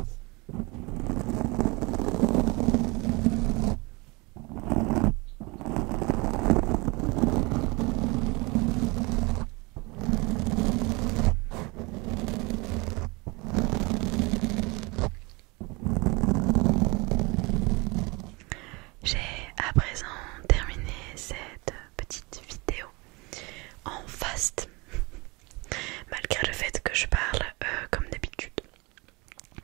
J'ai à présent terminé cette petite vidéo en fast, malgré le fait que je parle comme d'habitude.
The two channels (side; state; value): left; quieter; 26.4 dB